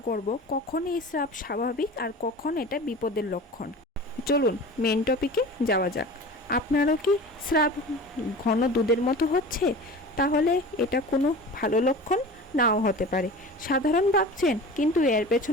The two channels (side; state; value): both; normal; correlation 0.36